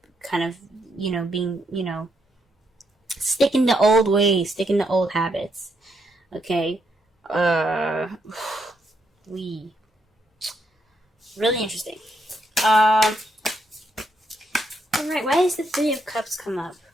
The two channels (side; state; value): both; normal; correlation 0.77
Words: kind of, being, sticking to old ways, sticking to old habits. Okay? Really interesting. Alright, why does the Three of Cups come up?